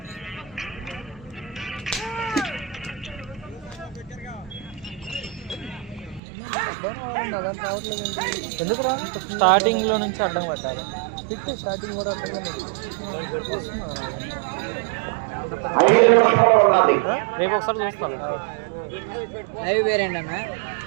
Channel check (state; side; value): drops out; left; at 6.2 s